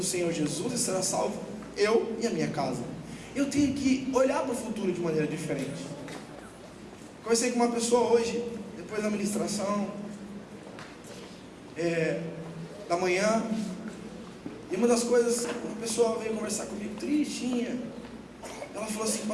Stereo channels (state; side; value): identical; both; correlation 1.00